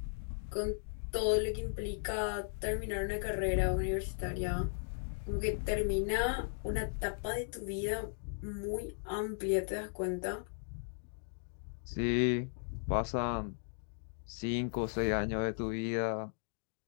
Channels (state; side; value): silent; right; digital silence